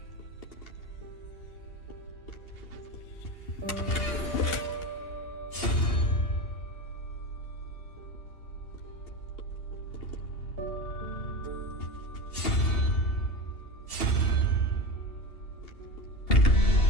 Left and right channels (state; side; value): late; right; 2.8 ms